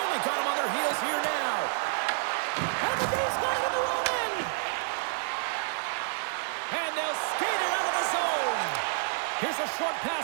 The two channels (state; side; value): silent; left; 58 dB below the other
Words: got him on their heels here now. And the Dave's got it in the wrong end. And they'll skate it out of the zone. Here's a short pass